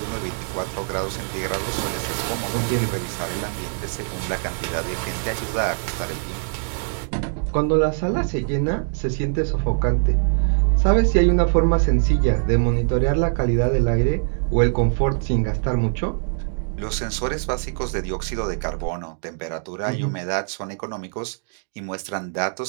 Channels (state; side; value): silent; left; digital silence